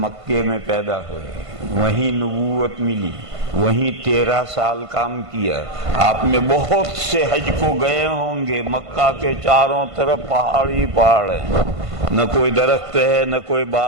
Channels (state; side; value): late; left; 1.5 ms